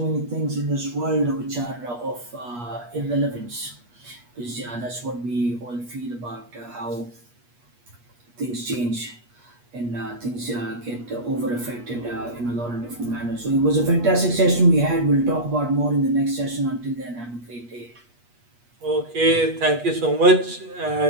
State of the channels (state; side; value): late; left; 8.3 ms